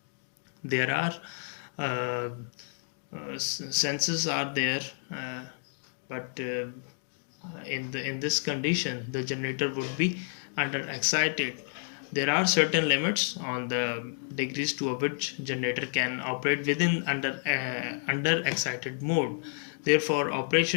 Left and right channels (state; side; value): silent; right; digital silence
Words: There are senses are there, but in this condition the generator would be under excited. There are certain limits on the degrees to which generator can operate within under excited mode. Therefore,